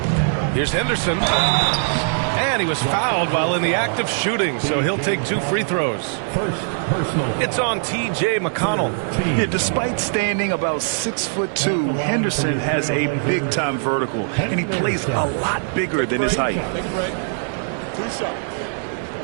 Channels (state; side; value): silent; left; 65 dB below the other